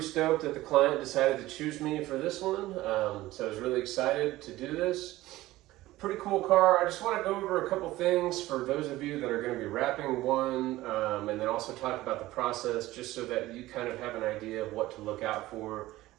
stoked that the client decided to choose me for this one. So I was really excited to do this. Pretty cool car. I just want to go over a couple things for those of you that are going to be wrapping one, and then also talk about the process just so that you kind of have an idea of what to look out for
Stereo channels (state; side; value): quieter; left; 17.1 dB